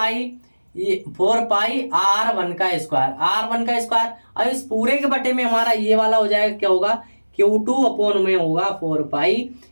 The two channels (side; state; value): both; inverted; correlation -1.00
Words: R1 का स्क्वायर। अब इस पूरे के बटे में हमारा ये वाला हो जाएगा क्या होगा? Q2 अपॉन में होगा 4 पाई